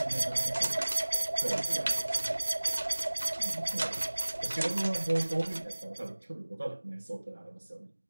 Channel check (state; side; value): inverted; both; correlation -1.00